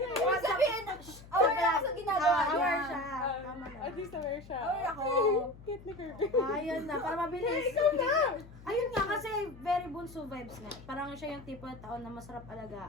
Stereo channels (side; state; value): left; noise; hum, 19 dB below the sound